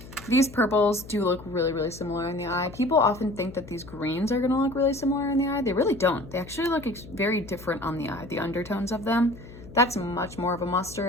these purples do look really, really similar in the eye. People often think that these greens are gonna look really similar in the eye. They really don't. They actually look very different on the eye, the undertones of them. That's much more of a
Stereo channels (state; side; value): noise; left; hum, 17 dB below the sound